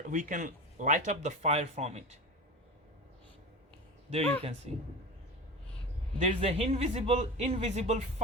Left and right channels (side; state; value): both; normal; correlation 0.28